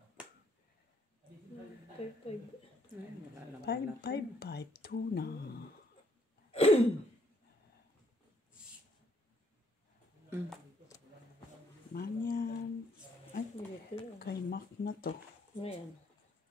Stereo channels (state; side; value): normal; both; correlation 0.69